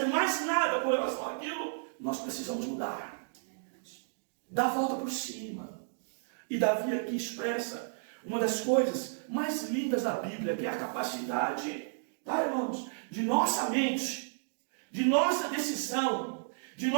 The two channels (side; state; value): left; silent; digital silence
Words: mais nada com relação àquilo. Nós precisamos mudar, dar a volta por cima. E Davi aqui expressa uma das coisas mais lindas da Bíblia, que é a capacidade, tá, irmãos, de nossa mente, de nossa decisão, de